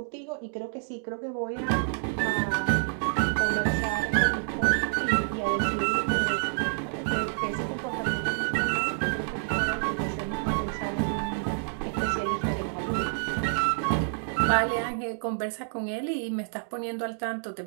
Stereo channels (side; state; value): left; silent; digital silence